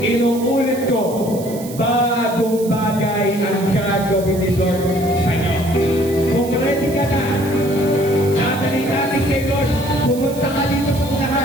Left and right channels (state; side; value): noise; right; hiss, 16 dB below the sound